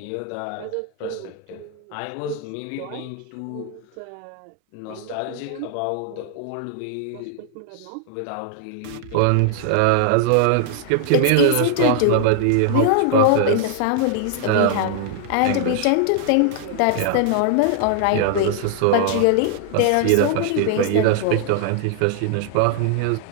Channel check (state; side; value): different; both; correlation -0.01